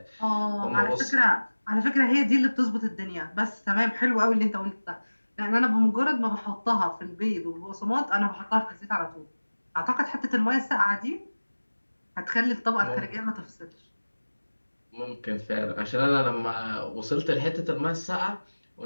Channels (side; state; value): both; inverted; correlation -1.00